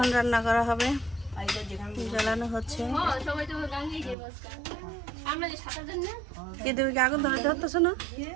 রান্না করা হবে, জ্বালানো হচ্ছে। সবাই তো গাঙ্গি খেয়ে বসকা আমরা যে সাঁতার দেন না কি তুমি কি আগুন ধরে ধরতেছো না?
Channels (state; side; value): drops out; left; at 4.2 s